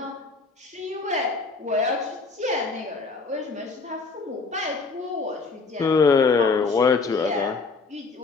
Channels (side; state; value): right; quieter; 4.3 dB